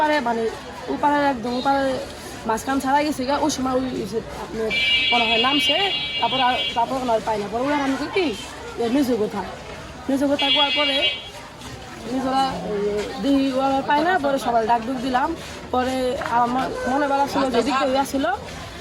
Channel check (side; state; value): both; identical; correlation 1.00